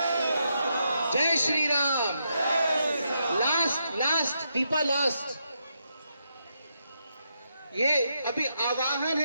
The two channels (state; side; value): inverted; both; correlation -0.81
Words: जय श्री राम लास्ट दीपा लास्ट ये अभी आवाहन